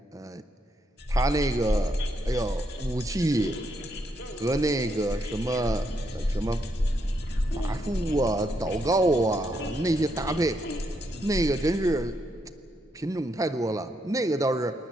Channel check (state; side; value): normal; both; correlation 0.78